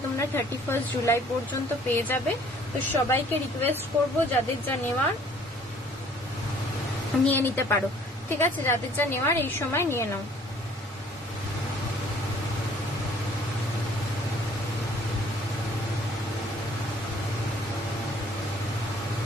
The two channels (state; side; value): normal; both; correlation 0.56